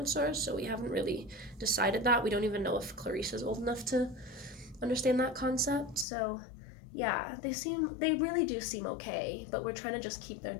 so we haven't really decided that. We don't even know if Clarice is old enough to understand that concept. So yeah, they really do seem okay, but we're trying to just keep their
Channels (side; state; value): right; drops out; at 6.1 s